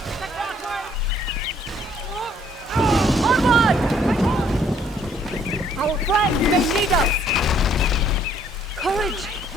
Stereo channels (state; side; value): normal; both; correlation 0.64